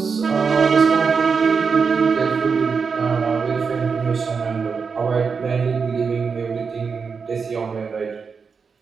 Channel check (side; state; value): left; quieter; 5.5 dB